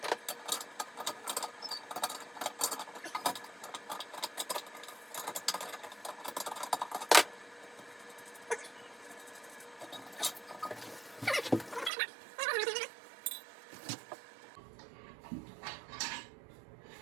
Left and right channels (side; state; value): left; drops out; at 11.9 s